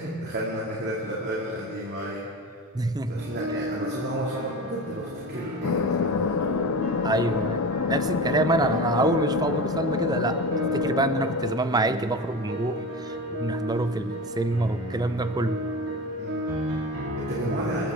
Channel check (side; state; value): both; normal; correlation 0.29